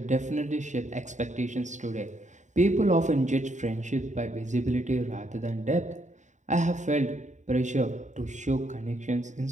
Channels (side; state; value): left; late; 0.35 ms